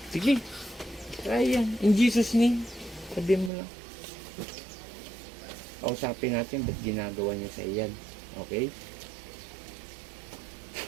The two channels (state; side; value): drops out; left; at 3.5 s